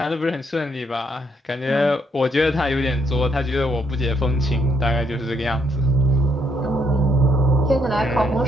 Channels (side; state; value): both; normal; correlation 0.72